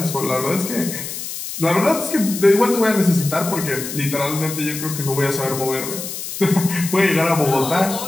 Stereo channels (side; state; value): left; noise; hiss, 8 dB below the sound